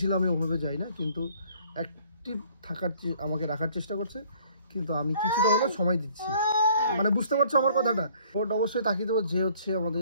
আমি ওভাবে যাই না, কিন্তু অ্যাক্টিভ আমাকে রাখার চেষ্টা করছে, কিন্তু আমি কিছুটা হলেও সময় দিচ্ছি। মানে বুঝতে পারছো আমার কথাটা? ভোট অবশ্যই তাকিয়ে দেবো যে হচ্ছে আমাদের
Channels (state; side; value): inverted; both; correlation -0.58